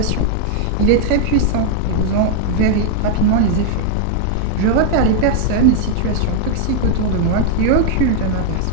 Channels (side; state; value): both; different; correlation 0.00